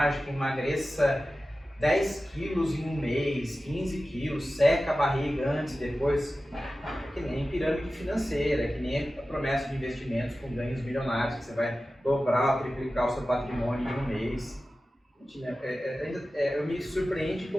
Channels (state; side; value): normal; both; correlation 0.95